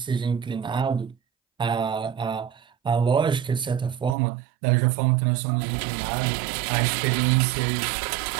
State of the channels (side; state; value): left; drops out; at 4.2 s